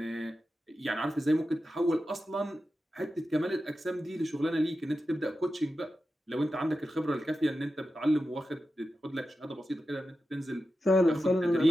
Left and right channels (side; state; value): both; normal; correlation 0.91